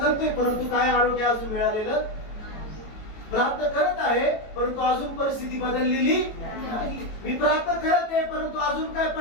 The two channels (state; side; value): late; right; 18 ms